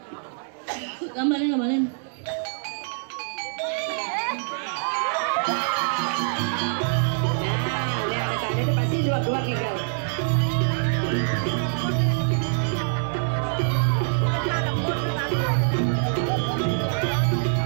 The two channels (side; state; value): left; silent; digital silence